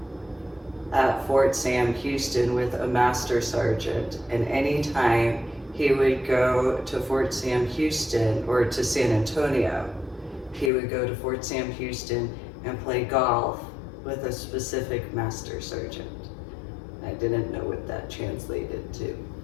at Fort Sam Houston with a master sergeant, and anytime he would go to Fort Sam Houston or to San Antonio, he would go to Fort Sam Houston and play golf with a specific master sergeant. I didn't know what that translated to,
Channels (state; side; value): drops out; right; at 10.7 s